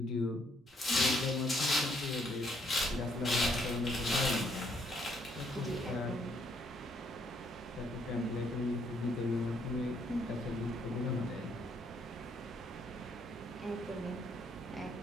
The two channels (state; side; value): normal; both; correlation 0.70